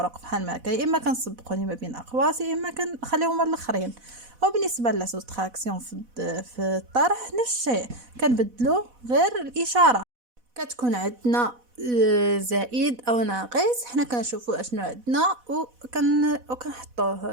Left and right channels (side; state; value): left; late; 4.1 ms